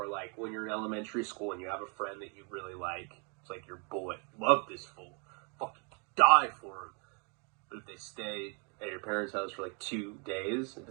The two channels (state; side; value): quieter; left; 35.5 dB